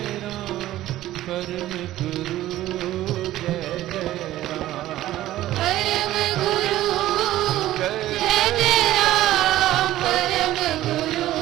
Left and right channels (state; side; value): quieter; left; 14.6 dB